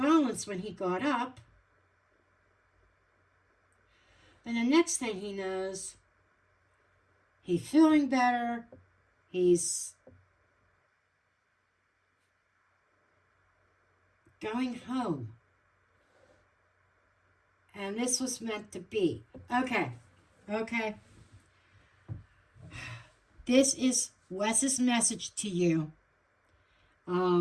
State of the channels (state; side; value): identical; both; correlation 1.00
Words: when he got up. And the next thing he knows, he's feeling better. He's going home. And this was meant to be. Okay. This is Wes's message to you.